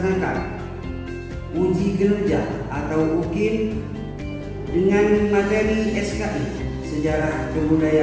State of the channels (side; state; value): both; identical; correlation 1.00